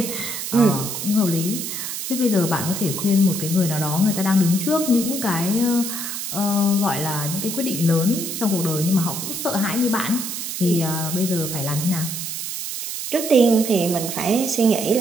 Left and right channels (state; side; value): noise; right; hiss, 5 dB below the sound